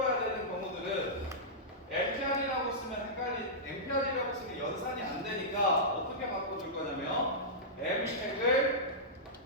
되는 경우들은 MPR이라고 쓰면 MPR이라고 쓰면 연산이 안 되니까 어떻게 바꿔줄 거냐면 MP를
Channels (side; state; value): both; normal; correlation -0.14